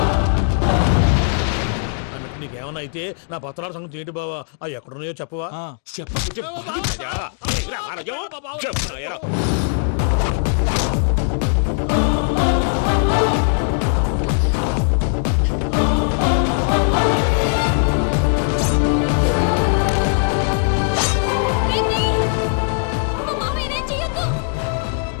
నీకేమన్నా అయితే నా పత్రాల సంగతి ఏంటి బావా? అవి ఎక్కడున్నాయో చెప్పవా?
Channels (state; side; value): silent; right; 66 dB below the other